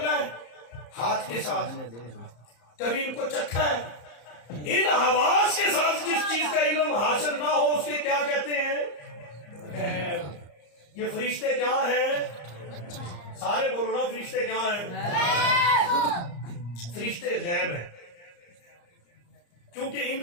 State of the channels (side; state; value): right; late; 34 ms